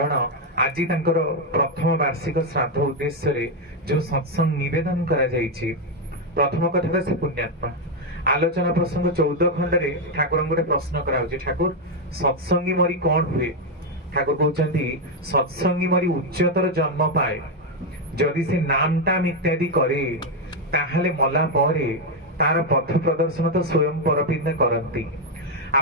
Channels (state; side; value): normal; both; correlation 0.03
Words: आज प्रथम वार्षिक श्राद्ध उद्देश्य जो सत्संग निवेदन करा जायछि प्रथम कथा से पुण्यात्मा आलोचना प्रसंग 14 खंड रे ठाकुर गोटे प्रश्न कराउछि ठाकुर सत्संगी मरी कौन हुए ठाकुर कहउछन्ती सत्संगी मरी उच्चतर जन्म पाए जदि से नाम टाम इत्यादि करे ताहले मला परे तार पथ प्रदर्शन तो स्वयं परपिंद करंती